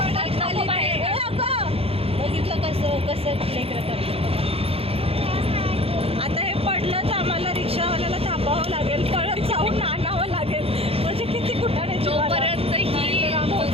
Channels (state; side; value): late; left; 0.28 ms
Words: आता हे पडलं तर आम्हाला रिक्षावाल्याला थांबावं लागेल, परत जाऊन आणावं लागेल. म्हणजे किती कुठाने तोपर्यंत